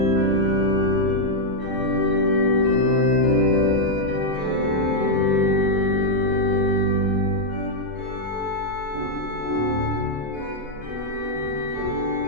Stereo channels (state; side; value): normal; both; correlation -0.03